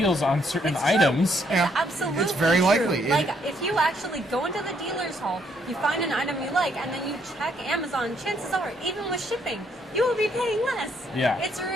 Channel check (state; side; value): normal; both; correlation 0.70